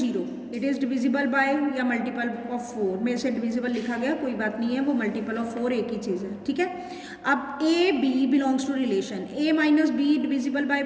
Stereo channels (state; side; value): identical; both; correlation 1.00